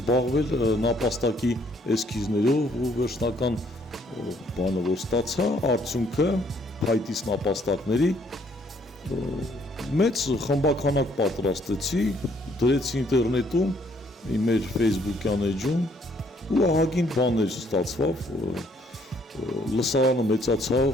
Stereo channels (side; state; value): both; normal; correlation 0.66